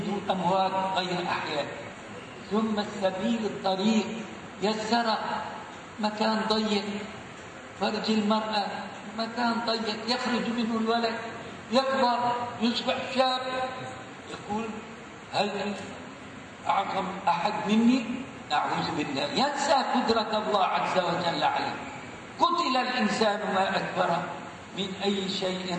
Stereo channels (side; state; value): both; identical; correlation 1.00